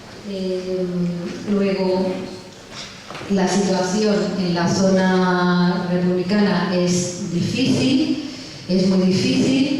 Luego, la situación en la zona republicana es difícil, es muy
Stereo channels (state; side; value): identical; both; correlation 1.00